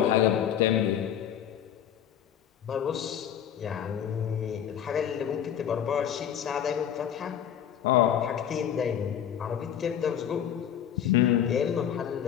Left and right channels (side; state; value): right; quieter; 9.6 dB